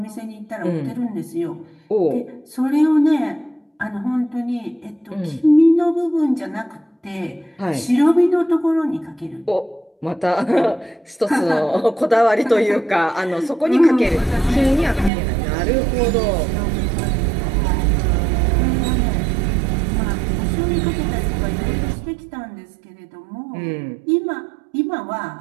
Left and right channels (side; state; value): left; drops out; at 15.1 s